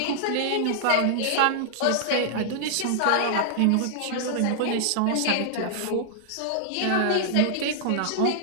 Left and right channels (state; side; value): different; both; correlation -0.01